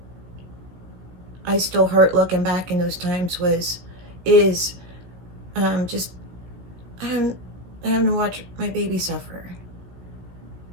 I still hurt looking back in those times is just having to watch my baby suffer.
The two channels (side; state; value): left; late; 17 ms